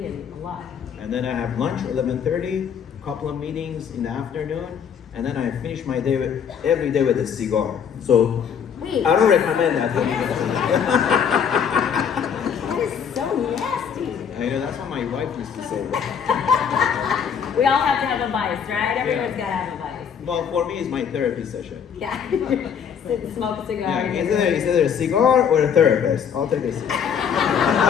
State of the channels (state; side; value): quieter; right; 7.5 dB